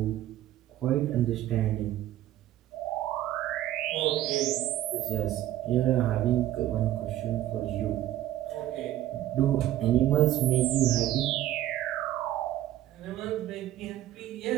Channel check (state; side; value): quieter; left; 13.4 dB